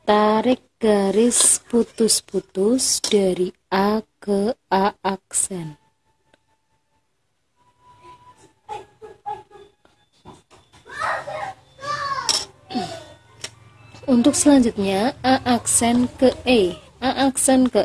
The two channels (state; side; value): identical; both; correlation 1.00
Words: Tarik garis putus-putus dari A ke A aksen. Untuk selanjutnya A aksen ke E. A aksen